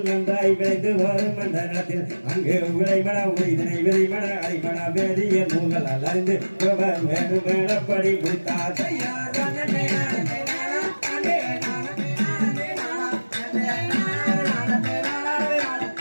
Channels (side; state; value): both; inverted; correlation -1.00